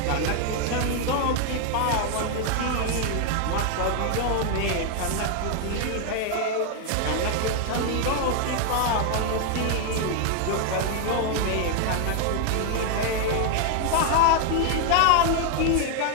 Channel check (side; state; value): both; different; correlation 0.00